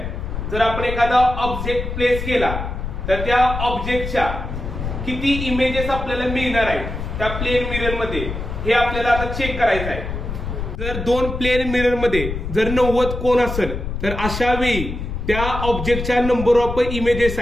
जर आपण एखादा ऑब्जेक्ट प्लेस केला तर त्या ऑब्जेक्टच्या किती इमेजेस आपल्याला मिळणार आहेत त्या प्लेन मिरर मध्ये हे आपल्याला आता चेक करायचं आहे। जर दोन प्लेन मिरर मध्ये जर 90 कोन असेल तर अशा वेळी त्या ऑब्जेक्टच्या नंबर ऑफ इमेजेस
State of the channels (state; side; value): noise; left; rumble, 5 dB below the sound